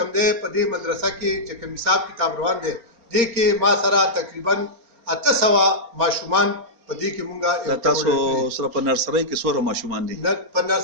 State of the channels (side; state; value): left; late; 4.3 ms